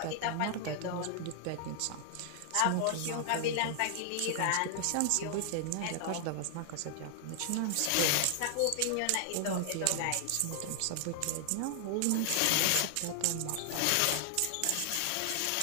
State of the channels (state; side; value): different; both; correlation 0.00